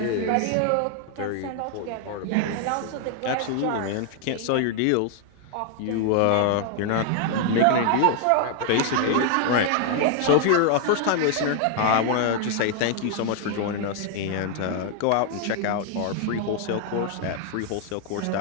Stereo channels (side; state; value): both; different; correlation 0.00